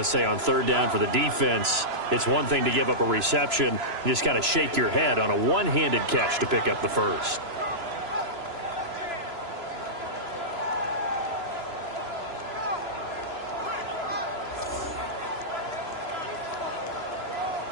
say on third down for the defense, it's one thing to give up a reception. You just kind of shake your head on a one-handed catch to pick up the first.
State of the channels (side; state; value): left; late; 3.0 ms